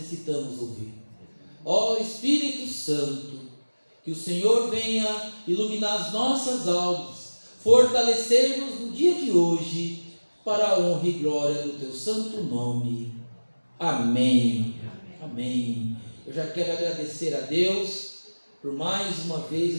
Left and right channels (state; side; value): inverted; both; correlation -1.00